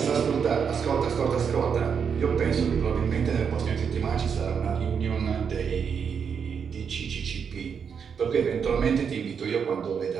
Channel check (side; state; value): left; quieter; 6.8 dB